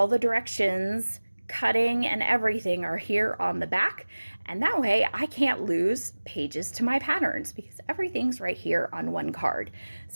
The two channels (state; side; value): inverted; both; correlation -1.00